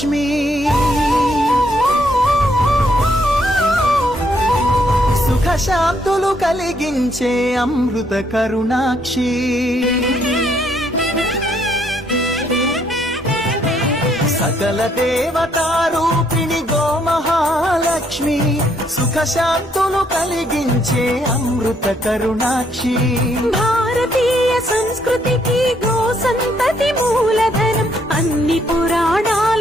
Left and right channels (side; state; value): both; normal; correlation 0.71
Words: సుఖ శాంతులు కలిగించే అమృత కరుణాక్షి సకల దేవతారూపిణి గోమహాలక్ష్మి సుఖ శాంతులు కలిగించే అమృత కరుణాక్షి భారతీయ సంస్కృతికి గో సంతతి మూలధనం అన్ని